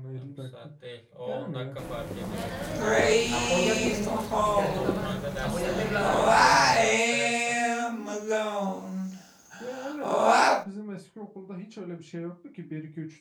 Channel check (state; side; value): identical; both; correlation 1.00